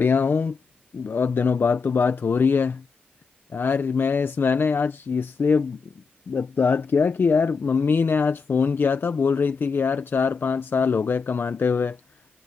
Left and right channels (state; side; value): quieter; right; 5.1 dB